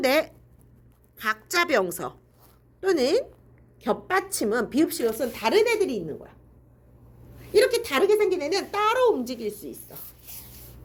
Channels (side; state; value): both; identical; correlation 1.00